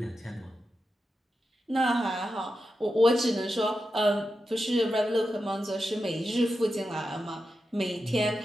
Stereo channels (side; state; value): both; normal; correlation 0.89